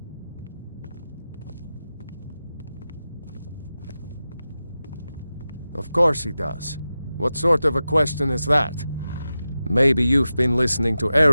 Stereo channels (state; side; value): inverted; both; correlation -0.93